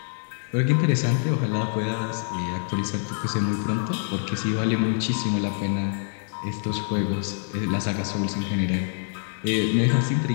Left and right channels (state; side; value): silent; right; 61 dB below the other